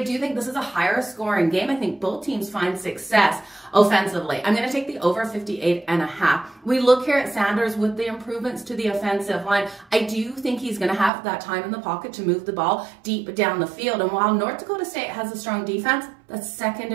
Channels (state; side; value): drops out; left; at 11.1 s